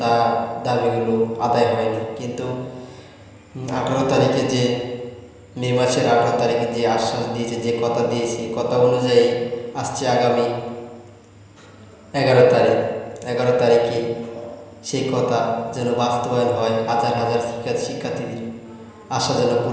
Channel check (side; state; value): both; identical; correlation 1.00